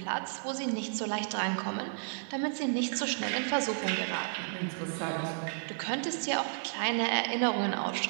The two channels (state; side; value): silent; left; digital silence